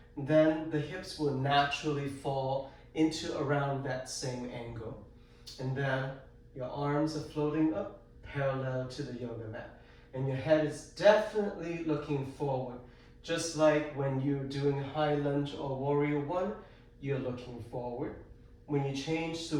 then the hips will naturally fall into around that same angle. And then your arms are floating up parallel to the yoga mat. And your head is definitely looking forward. Just like when you're doing high lunge or Warrior 1, you're looking forward. When you change to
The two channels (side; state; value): both; identical; correlation 1.00